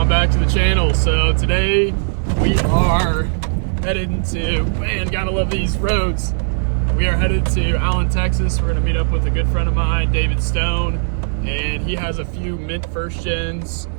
back to the channel. So today we are headed to, man, gotta love these roads. We are headed to Allen, Texas. We're gonna meet up with a good friend of mine, David Stone, and he has a few mint first gens.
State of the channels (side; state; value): left; silent; 63 dB below the other